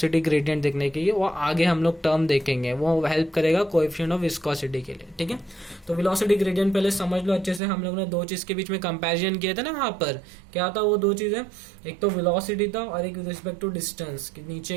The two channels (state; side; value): drops out; left; at 7.6 s